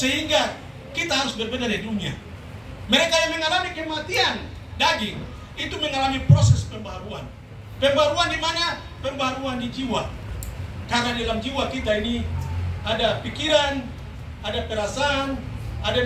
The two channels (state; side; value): identical; both; correlation 1.00